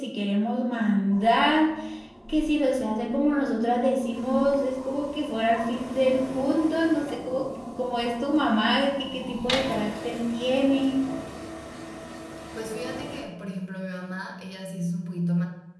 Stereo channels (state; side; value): identical; both; correlation 1.00